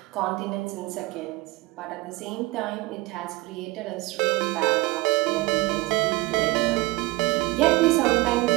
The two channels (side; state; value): left; quieter; 22.0 dB